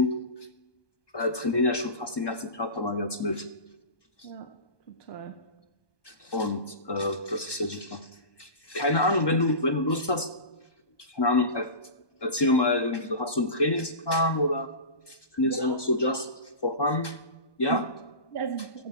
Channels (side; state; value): right; late; 1.2 ms